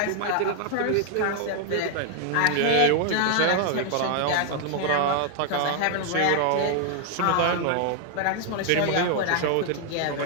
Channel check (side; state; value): both; different; correlation 0.00